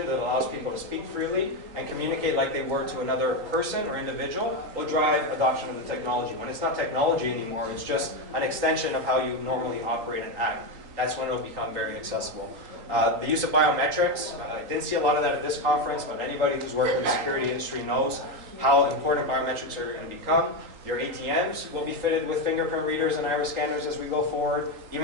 that allows people to speak freely and communicate like they were to another person or individual will drive adoption of the technology. When it's not technology anymore, it's just an extension of how you normally operate and act. That's when it'll become very accessible. The use of biometrics, I didn't see a lot of that at this conference, but anybody who's worked in the security industry knows how important biometrics are going to become. Your ATMs will be fitted with fingerprint readers and iris scanners as we go forward.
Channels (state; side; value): late; left; 3.8 ms